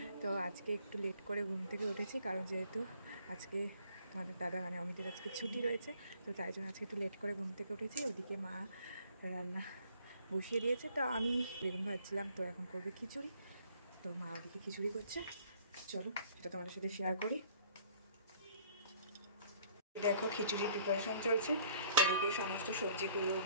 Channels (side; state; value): both; inverted; correlation -0.58